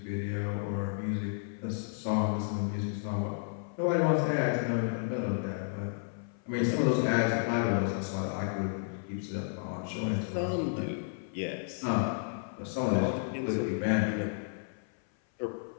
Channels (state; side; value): silent; right; 56 dB below the other